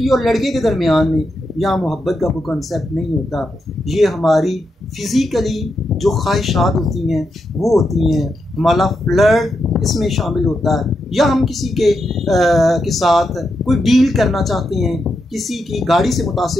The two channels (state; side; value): normal; both; correlation 0.84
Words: और लड़के के दरमियान में, यहाँ मोहब्बत का कोई कंसेप्ट नहीं होता। ये हमारी फिज़िकली जो ख्वाहिशात होती हैं वो होती हैं, हमारा फ्लर्ट इसमें शामिल होता है, या हम किसी के साथ कोई डील करना चाहते हैं, किसी की गाड़ी से